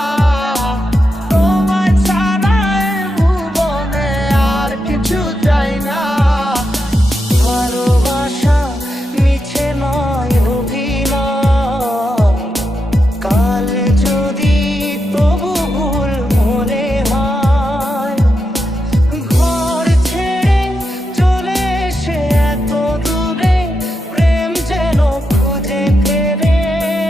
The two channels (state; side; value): normal; both; correlation 0.86